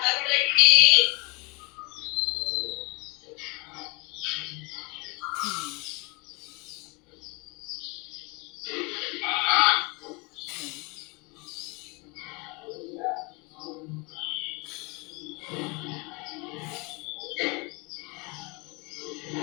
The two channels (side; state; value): right; quieter; 28.5 dB